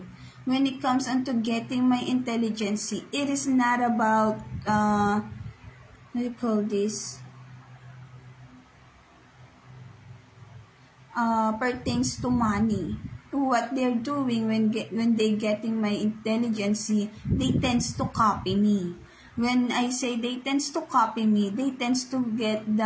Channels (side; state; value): both; identical; correlation 1.00